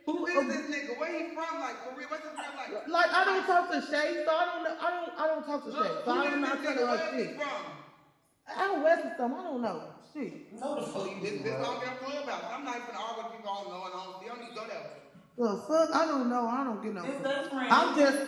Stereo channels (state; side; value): identical; both; correlation 1.00